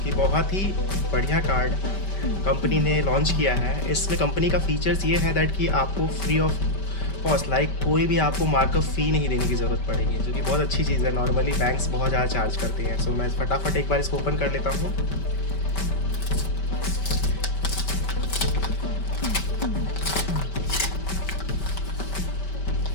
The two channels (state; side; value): late; right; 5.2 ms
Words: कि बहुत ही बढ़िया कार्ड कंपनी ने लॉन्च किया है। इसमें कंपनी का फीचर्स ये है दैट कि आपको फ्री ऑफ कॉस्ट कोई भी आपको मार्कअप फ़ी नहीं देने की ज़रूरत पड़ेगी, जो कि बहुत अच्छी चीज़ है। नॉर्मली बैंक्स बहुत ज़्यादा चार्ज करते हैं। सो मैं फटाफट एक बार इसको ओपन कर लेता हूँ।